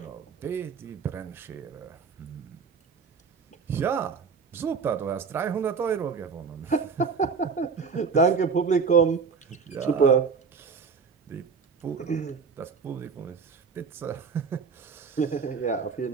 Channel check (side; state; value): left; quieter; 5.5 dB